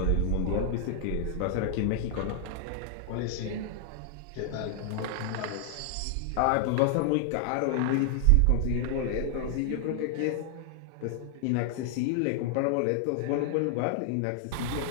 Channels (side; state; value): both; different; correlation 0.00